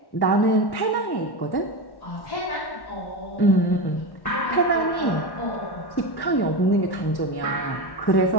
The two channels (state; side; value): late; right; 1.1 ms